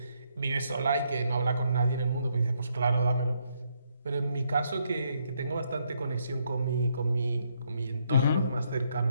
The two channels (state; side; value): inverted; both; correlation -0.74